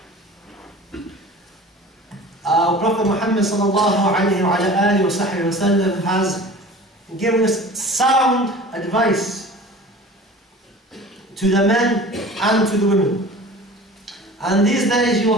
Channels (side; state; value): both; normal; correlation 0.41